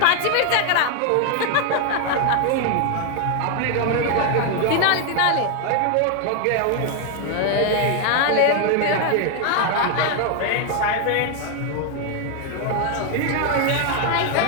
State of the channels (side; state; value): both; different; correlation 0.00